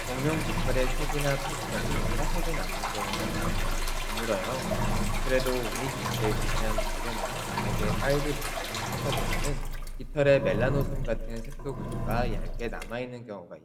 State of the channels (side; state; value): both; identical; correlation 1.00